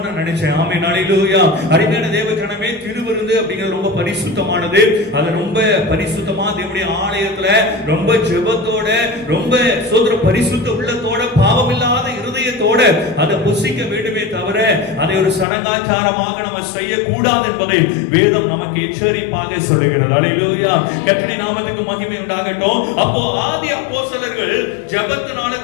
நான் நினைச்சேன். ஆமென், ஹல்லேலூயா. அருமையான தேவஜனமே, திருவிருந்து அப்படிங்கிறது ரொம்ப பரிசுத்தமானது. அது ரொம்ப பரிசுத்தமா தேவனுடைய ஆலயத்துல ரொம்ப ஜெபத்தோட ரொம்ப சோதர பரிசுத்த உள்ளத்தோட பாவமில்லாத இருதயத்தோட அதை புசிக்க வேண்டுமே தவிர அதை ஒரு சடங்காச்சாரமாக நம்ம செய்யக்கூடாது என்பதை வேதம் நமக்கு எச்சரிப்பாக சொல்லுகிறது. ஹல்லேலூயா. கர்த்தருடைய நாமத்துக்கு மகிமை உண்டாகட்டும். அப்போ ஆதி அப்போஸ்தலர்கள் ஜெபத்தினால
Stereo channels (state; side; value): drops out; right; at 15.5 s